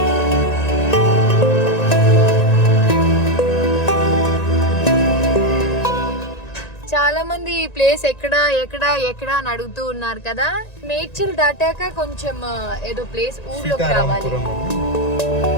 చాలా మంది ఈ ప్లేస్ ఎక్కడ ఎక్కడ ఎక్కడ అని అడుగుతూ ఉన్నారు కదా. నేచర్ దాటాక కొంచెం ఏదో ప్లేస్ ఊర్లోకి రావాలి.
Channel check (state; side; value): late; right; 1.9 ms